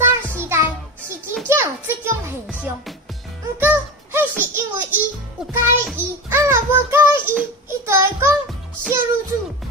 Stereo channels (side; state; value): both; normal; correlation 0.25